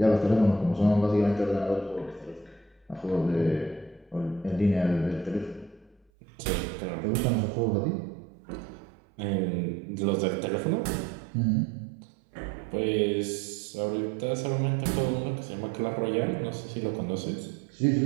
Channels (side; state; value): left; drops out; at 6.0 s